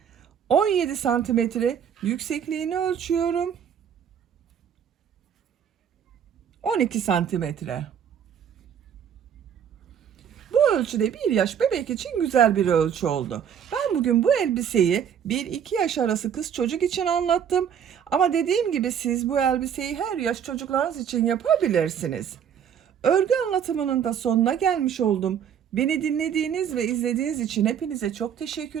17 santimetre yüksekliğini ölçüyorum. 12 santimetre. Bu ölçüde 1 yaş bebek için güzel bir ölçü oldu. Ben bugün bu elbiseyi 1-2 yaş arası kız çocuk için anlattım. Ama dediğim gibi siz bu elbiseyi her yaş çocuklarınız için yapabilirsiniz. Örgü anlatımının da sonuna gelmiş oldum. Beni dinlediğiniz ve izlediğiniz için hepinize çok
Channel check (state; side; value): quieter; left; 8.5 dB